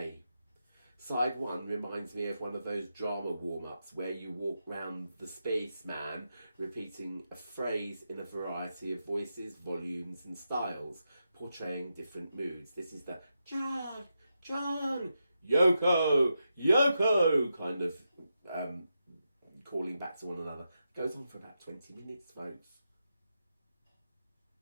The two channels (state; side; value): inverted; both; correlation -0.87